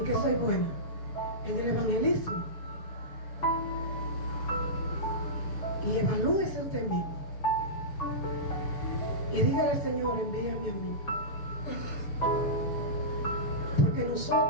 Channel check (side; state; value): right; late; 6.9 ms